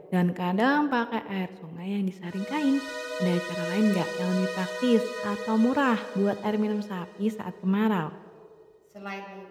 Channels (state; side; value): identical; both; correlation 1.00